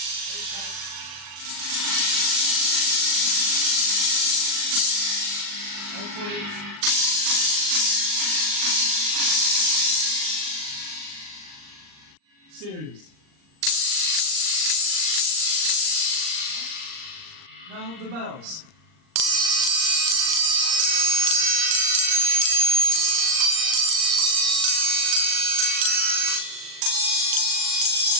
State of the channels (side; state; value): left; late; 39 ms